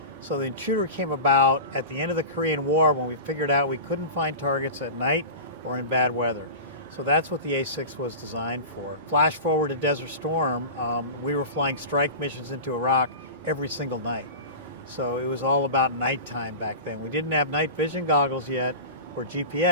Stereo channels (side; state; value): both; inverted; correlation -0.31